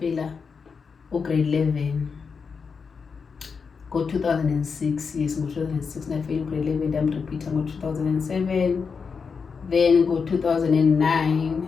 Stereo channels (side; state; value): right; quieter; 5.5 dB